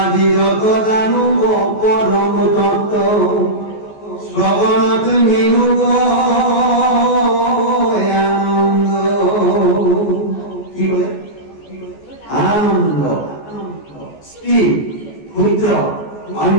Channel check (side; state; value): right; late; 14 ms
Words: যত জানু পরম তত্ত্ব, শ্রবণত মিনু আনন্দ। কি বলে? আনন্দ। স্ত্রী, ক্ষুদ্র,